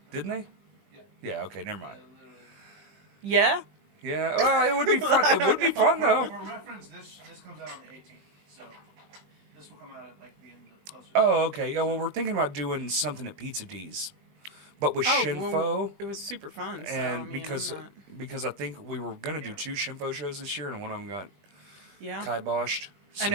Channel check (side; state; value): left; late; 20 ms